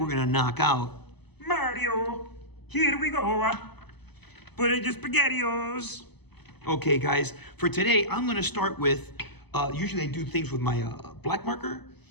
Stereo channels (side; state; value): right; late; 0.99 ms